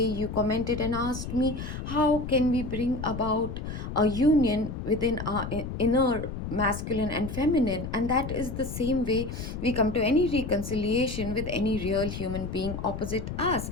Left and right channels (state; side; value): noise; left; rumble, 6 dB below the sound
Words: you commented and asked me, how can we bring about a union within our inner masculine and feminine? And that is the same way we come to any reconciliation with any real human being opposite us.